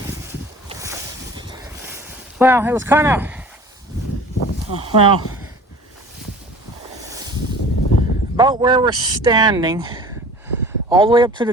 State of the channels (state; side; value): normal; both; correlation 0.44